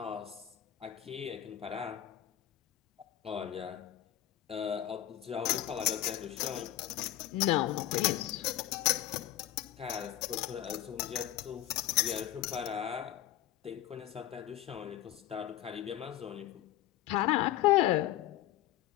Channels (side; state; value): right; quieter; 13.1 dB